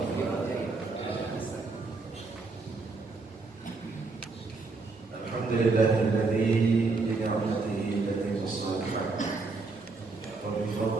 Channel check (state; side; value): quieter; left; 3.9 dB